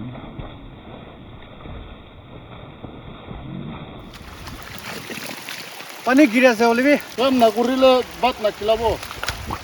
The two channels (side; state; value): both; identical; correlation 1.00